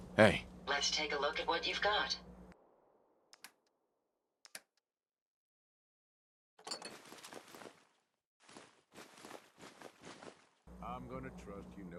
Hey. Let's take a look at what you've got. I'm gonna trust you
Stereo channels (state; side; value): identical; both; correlation 1.00